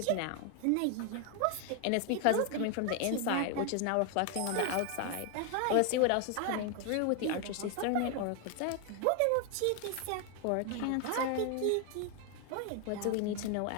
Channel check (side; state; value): both; different; correlation 0.00